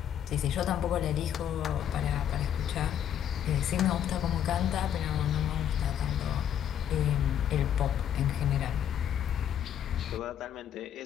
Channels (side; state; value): right; quieter; 9.6 dB